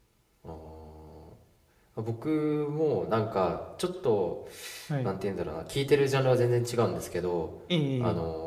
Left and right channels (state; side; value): identical; both; correlation 1.00